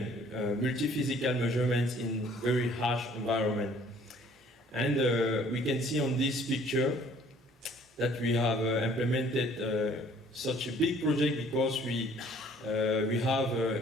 multi-physical measurements in very harsh environment. And we can see on this picture that we have implemented such a big project because we have,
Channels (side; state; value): both; normal; correlation 0.56